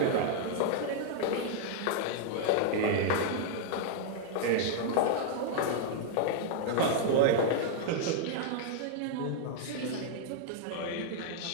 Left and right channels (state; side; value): different; both; correlation -0.01